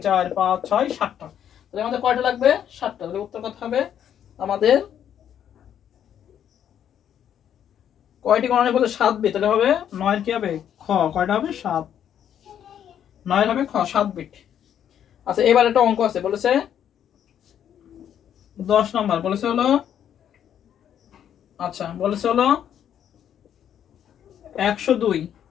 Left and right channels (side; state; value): right; quieter; 9.6 dB